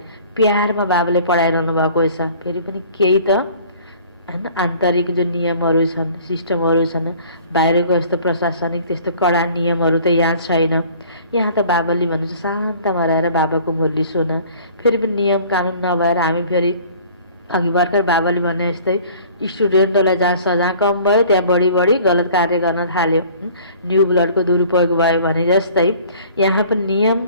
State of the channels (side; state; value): both; inverted; correlation -0.50